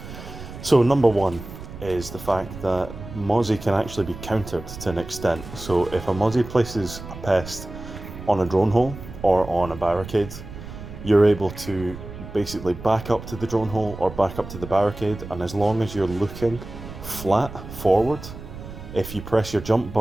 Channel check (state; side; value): noise; right; rumble, 12 dB below the sound